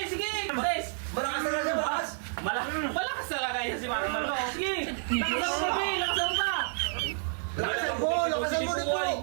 Sige! Tres! Malakas na siya, malakas! Malakas talaga yan si Mami Malo. Sige! Lakasan mo, pre! Lakasan mo pa! Lakasan mo. Lakasan mo nito.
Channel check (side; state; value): left; silent; 58 dB below the other